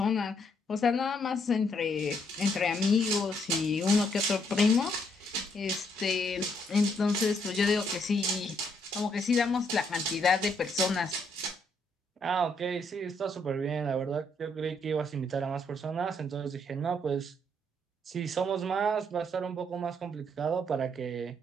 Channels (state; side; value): normal; both; correlation 0.72